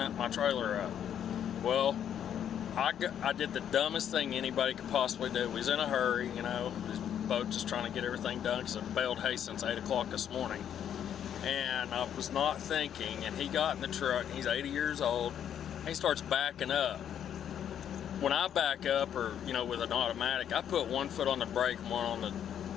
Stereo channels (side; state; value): right; quieter; 9.4 dB